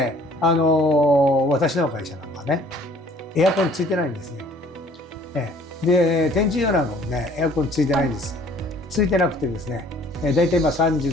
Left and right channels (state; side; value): normal; both; correlation 0.55